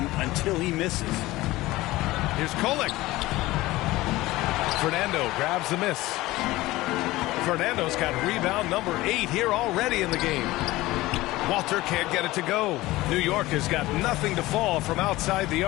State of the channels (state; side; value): quieter; right; 18.4 dB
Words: until he misses. Here's Kolek. Fernando grabs the miss. Fernando's got rebound number 8 here already in the game. Walter can't get it to go. New York has got nothing to fall from outside the